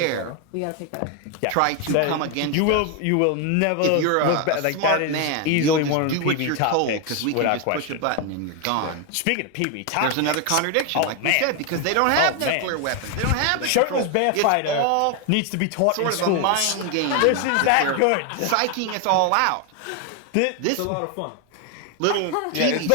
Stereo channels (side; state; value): both; different; correlation 0.01